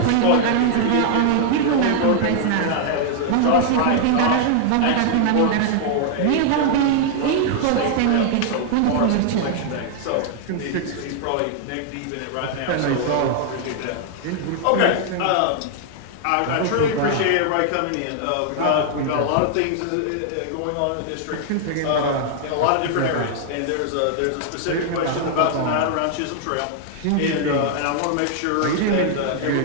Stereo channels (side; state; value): both; different; correlation 0.00